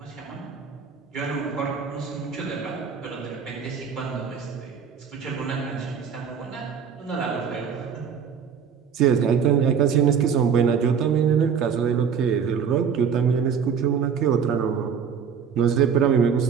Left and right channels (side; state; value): left; quieter; 7.0 dB